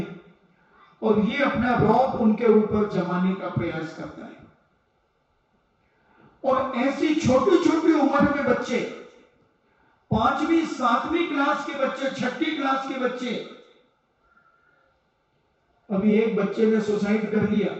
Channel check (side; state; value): both; identical; correlation 1.00